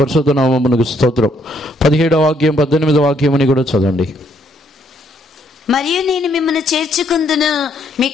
నామమునకు స్తోత్రం. 17వ వాక్యం 18వ వాక్యముని కూడా చదవండి. మరియు నేను మిమ్మల్ని చేర్చుకుందును,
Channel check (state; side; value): normal; both; correlation 0.70